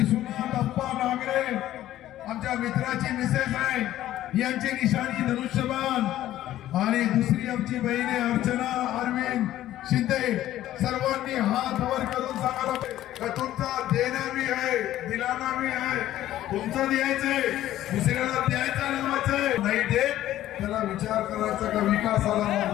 अप्पा नागरे आमच्या मित्राची मिसेस आहे, यांची निशाणी धनुष्यबाण. आणि दुसरी आमची बहीण आहे अर्चना अरविंद शिंदे. सर्वांनी हात वर करून सांगायला तुमचा देणं बी आहे, दिलाना बी आहे. तुमचं द्यायचंय, दुसऱ्याला द्यायचं नावाचंय. नाही देत त्याला विचार करायचा का विकासाला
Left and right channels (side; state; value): right; quieter; 13.5 dB